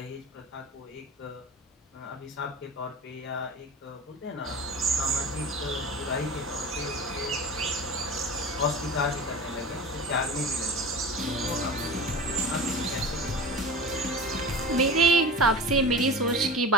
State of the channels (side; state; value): both; normal; correlation 0.33